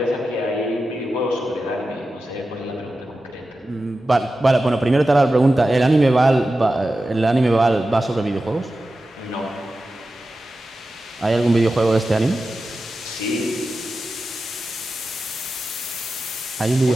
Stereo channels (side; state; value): both; normal; correlation 0.93